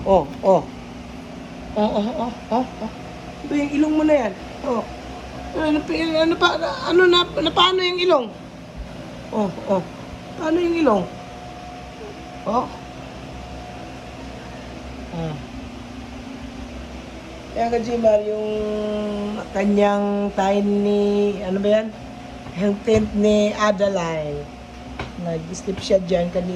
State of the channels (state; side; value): identical; both; correlation 1.00